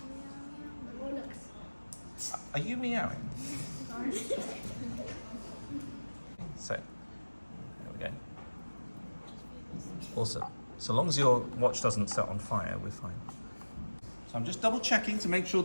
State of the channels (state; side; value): inverted; both; correlation -1.00